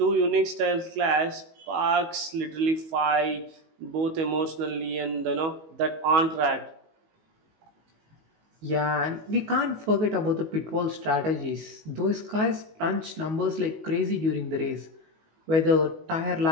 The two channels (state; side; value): late; left; 19 ms